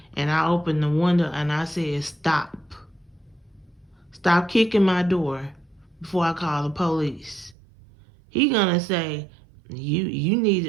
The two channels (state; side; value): drops out; left; at 7.6 s